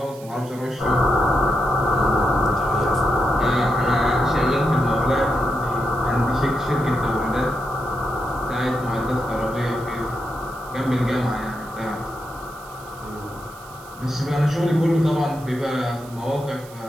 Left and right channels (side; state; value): right; noise; hiss, 21 dB below the sound